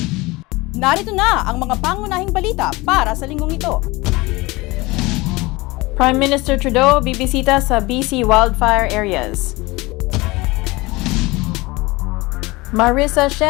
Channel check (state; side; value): quieter; right; 22.3 dB